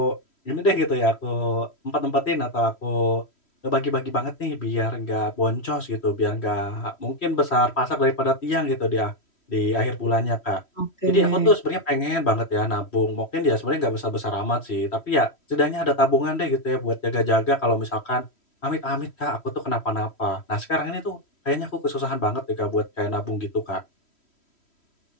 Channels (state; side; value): late; right; 3.1 ms